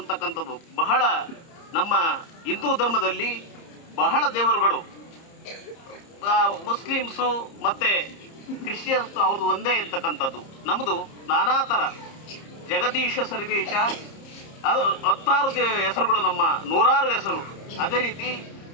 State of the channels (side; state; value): right; late; 30 ms